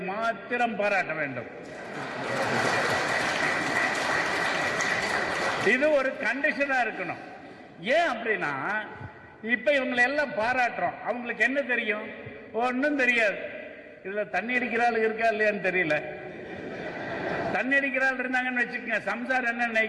மாத்திரம் பாராட்ட வேண்டும். இது ஒரு கண்டிஷனா இருக்கணும். ஏன் அப்படின்னா இப்ப இவங்களை எல்லாம் பாராட்டுறோம், அவங்களுக்கு என்ன தெரியும்? ஒன்றும் தெரியாது. இதுல தண்ணி அடிக்கிறாள் இருக்கா இல்லையான்னு தெரியல. தண்ணி அடிக்கிறாள் இருந்தாங்கன்னு வச்சுக்கோங்க, சம்சார் என்ன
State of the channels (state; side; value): identical; both; correlation 1.00